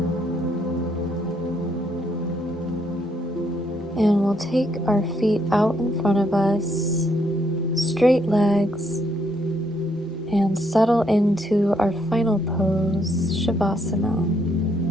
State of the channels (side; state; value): both; normal; correlation 0.73